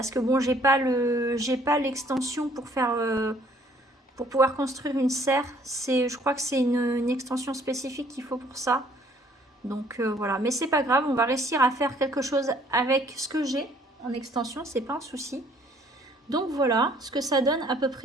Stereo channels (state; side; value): normal; both; correlation 0.60